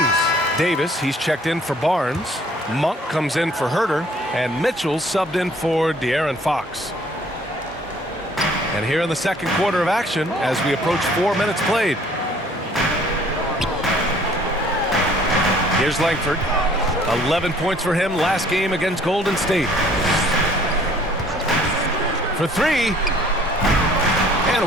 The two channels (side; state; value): both; normal; correlation 0.57